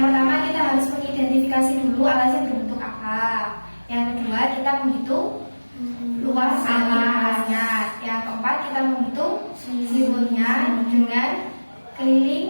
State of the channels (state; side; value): inverted; both; correlation -1.00